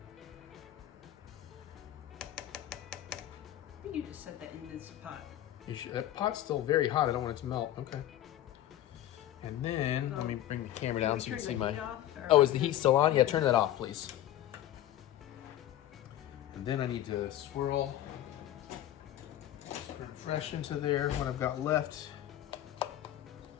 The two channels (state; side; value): quieter; right; 13.0 dB